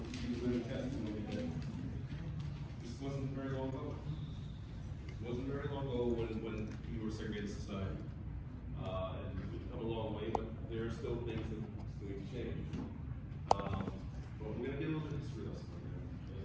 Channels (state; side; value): identical; both; correlation 1.00